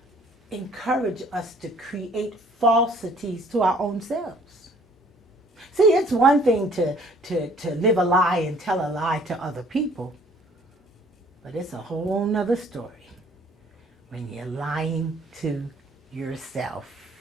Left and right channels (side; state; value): both; normal; correlation 0.57